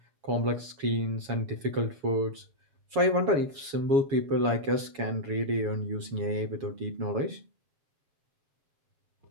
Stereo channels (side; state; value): left; late; 7.2 ms